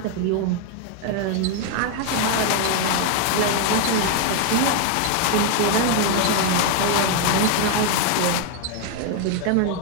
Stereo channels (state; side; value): different; both; correlation 0.01